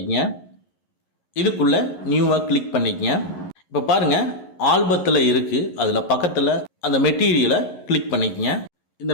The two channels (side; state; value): right; late; 11 ms